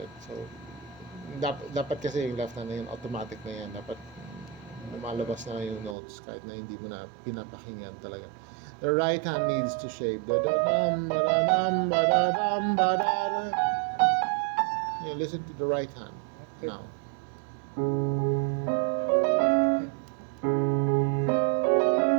So dapat kasi yung left hand na yun, automatic na yan. Dapat lumalabas na lang yung notes kahit na hindi mo na pinapakinggan talaga. The right hand needs to shape. Yeah, listen to the right hand Okay. now.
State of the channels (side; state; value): left; drops out; at 6.0 s